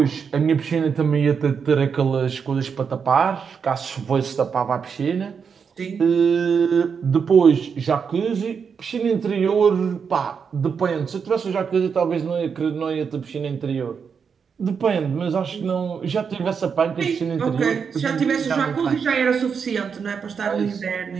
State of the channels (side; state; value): left; quieter; 6.3 dB